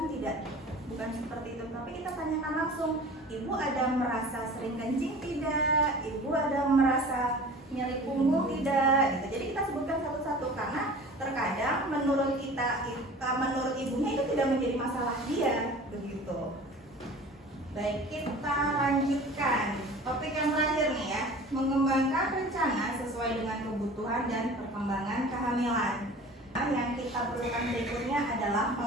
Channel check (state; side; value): normal; both; correlation 0.41